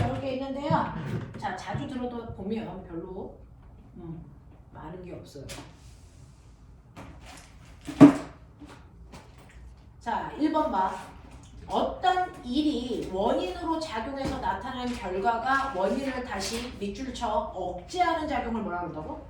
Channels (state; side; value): identical; both; correlation 1.00